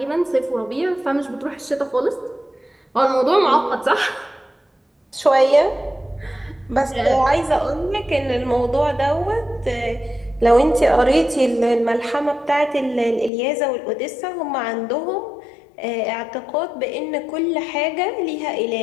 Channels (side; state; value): right; drops out; at 13.3 s